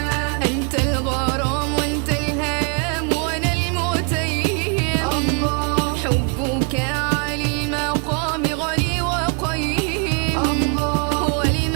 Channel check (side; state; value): left; quieter; 36.1 dB